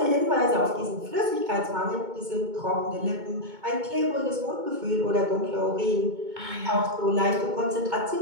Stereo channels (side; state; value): left; late; 2.2 ms